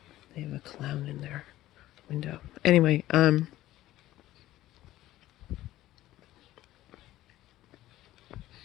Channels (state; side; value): quieter; right; 15.0 dB